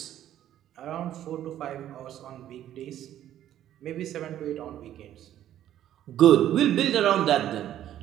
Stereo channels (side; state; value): left; quieter; 11.8 dB